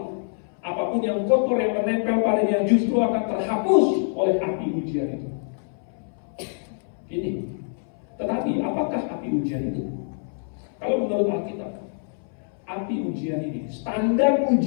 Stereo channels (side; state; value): right; silent; 62 dB below the other